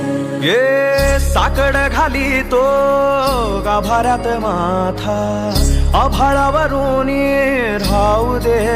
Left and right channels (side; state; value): both; identical; correlation 1.00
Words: ये साकड घाली तो गाभाऱ्यात माथा, आभाळावरून राहू दे